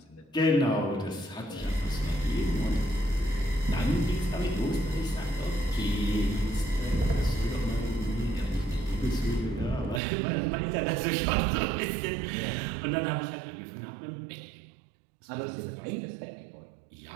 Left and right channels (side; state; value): left; drops out; at 10.0 s